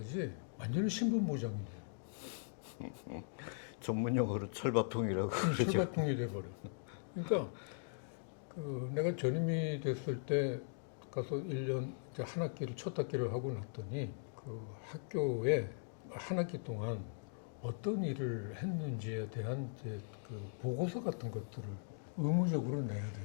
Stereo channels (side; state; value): right; silent; digital silence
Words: 완전히 신분보장이 돼요. 전문 용어로 철밥통이라고 그러죠. 철밥통이 돼버려. 그러니까 그 내가 전임이 됐을 때 가서 1년 이제 한 학기를 첫 학기를 하고 났더니 그 학교에 한 학기 동안 어떤 일을 했는지에 대한 이제 그 보고서 같은 것들을 의무적으로 내야